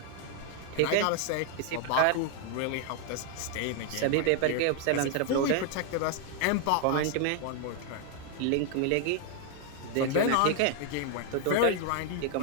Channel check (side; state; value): both; different; correlation 0.00